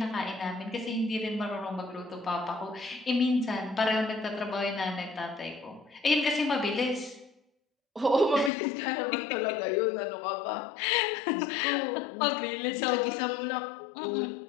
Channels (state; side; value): drops out; right; at 8.5 s